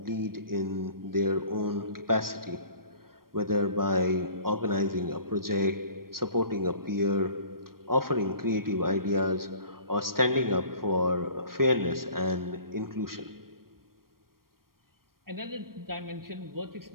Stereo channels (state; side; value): late; left; 0.93 ms